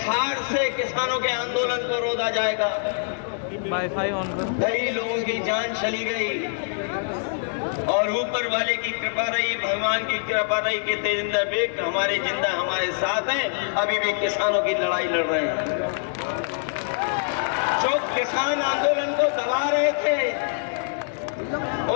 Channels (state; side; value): silent; right; 62 dB below the other